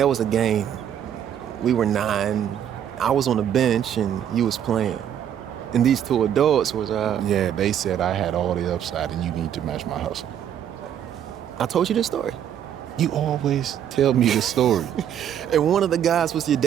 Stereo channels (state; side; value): quieter; left; 9.7 dB